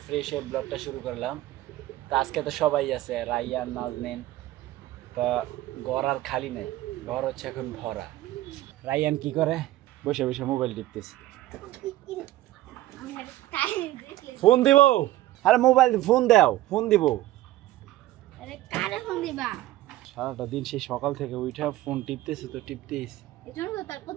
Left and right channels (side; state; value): left; quieter; 15.7 dB